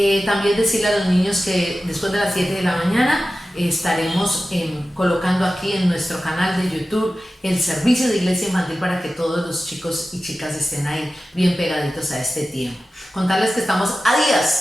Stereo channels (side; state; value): both; normal; correlation 0.95